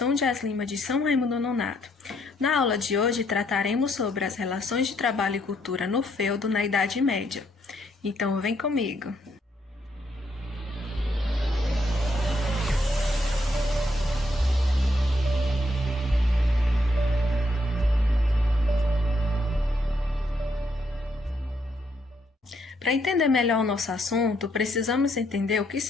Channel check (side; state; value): both; normal; correlation 0.74